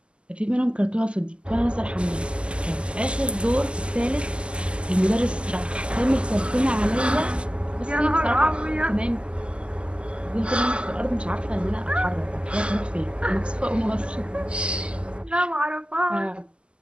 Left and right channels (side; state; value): left; late; 0.052 ms